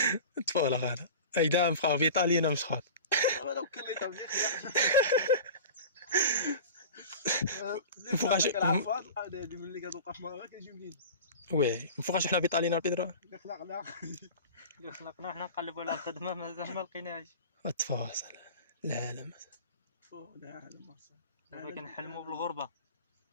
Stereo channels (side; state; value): both; inverted; correlation -0.35